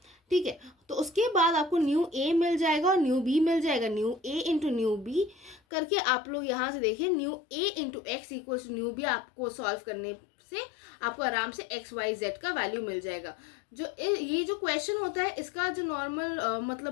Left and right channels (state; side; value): drops out; right; at 5.6 s